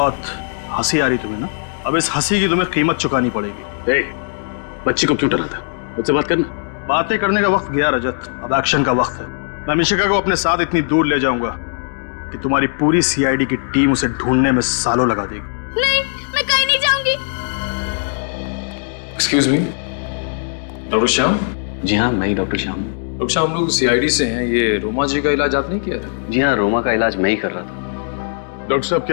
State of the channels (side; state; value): right; silent; digital silence